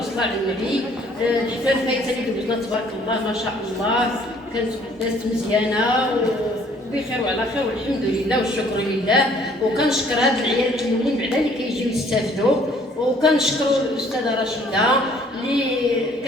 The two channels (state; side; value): normal; both; correlation 0.59